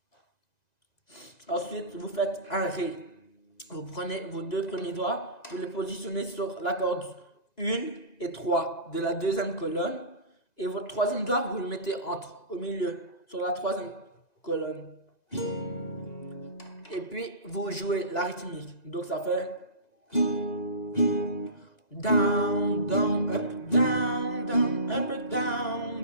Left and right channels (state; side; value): late; right; 2.0 ms